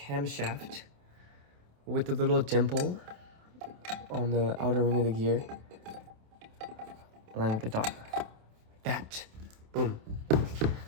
with the little dimple on the outer ring of the gear, align with the dot. Like that. Boom.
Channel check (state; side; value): late; left; 27 ms